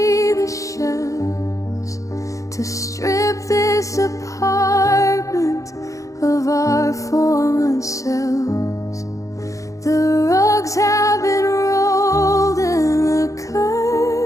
the shelves to strip this apartment of our former selves. The rugs have been rolled and the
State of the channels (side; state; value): right; late; 0.16 ms